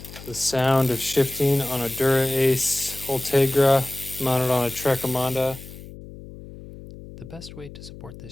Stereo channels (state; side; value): noise; left; hum, 15 dB below the sound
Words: The sound of shifting on a Dura Ace Ultegra mounted on a Trek Emonda. The best way to support